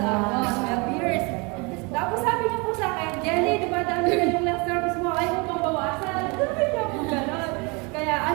12 years. Tapos sabi niya po sa akin, Jelly, di ba dami na yung last service mo, ayaw mo pang bawasan. Sabi niya po gano'n. Kaya,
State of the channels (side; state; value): left; quieter; 29.4 dB